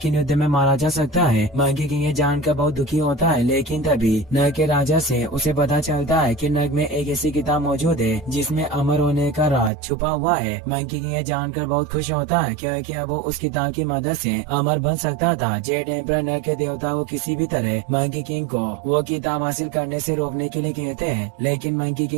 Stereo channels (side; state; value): left; drops out; at 9.7 s